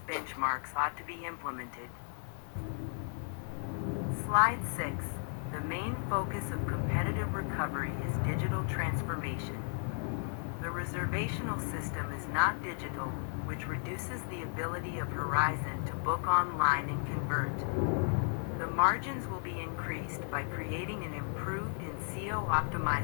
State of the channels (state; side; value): silent; right; 55 dB below the other